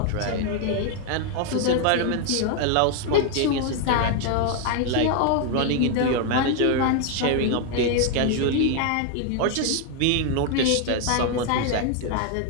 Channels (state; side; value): different; both; correlation 0.00